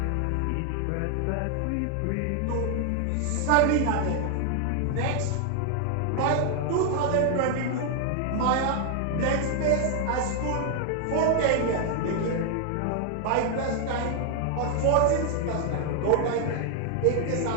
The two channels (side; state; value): both; different; correlation 0.00